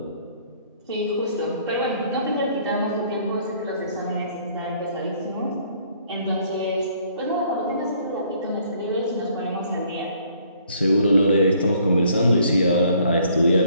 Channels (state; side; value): inverted; both; correlation -0.62